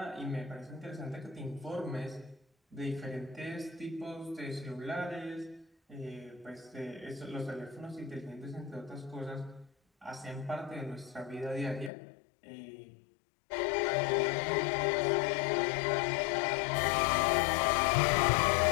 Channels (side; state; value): right; drops out; at 11.9 s